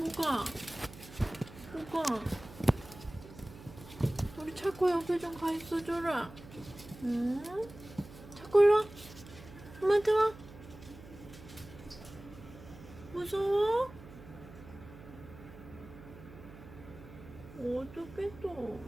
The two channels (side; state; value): right; noise; hum, 17 dB below the sound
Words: 뭐가? 우리 차코 옆에 좀 가 있어 줘라. 응? 차코 일로 와. 엄마한테 와. 무서워? 어떡해 또.